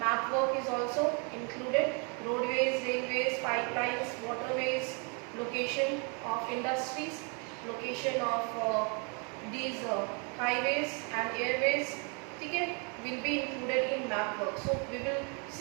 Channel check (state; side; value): quieter; left; 35.7 dB